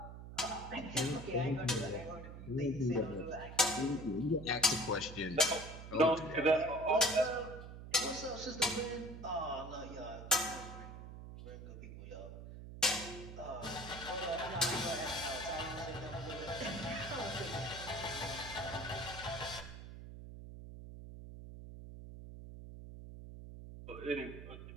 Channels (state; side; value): noise; right; hum, 11 dB below the sound